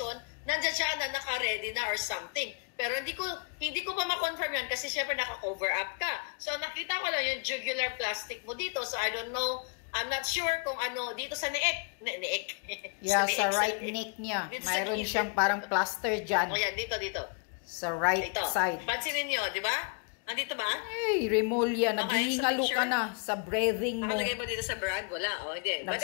nandiyan siya na naka-ready na or something. Pero hindi ko pa ma-confirm yan kasi syempre naka-cover up ka. So nakita ko lang yung jugular plastic mo dito. So I don't know, I'm not sure kung ano, dito sa neek. Yeah, sa right neck niya. Mayroon siyang parang plaster dyan. O yan, dito. Sa right side. Pansinin nyo, di ba? Andito ba? Hey, Remulla, naghihingalo ka na sa breathing mo. Nakalagay ba dito sa brand? Wala. O, hindi.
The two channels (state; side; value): quieter; right; 36.6 dB